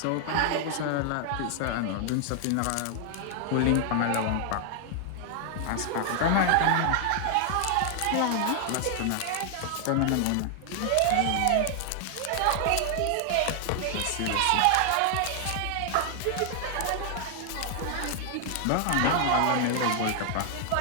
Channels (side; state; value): both; different; correlation 0.00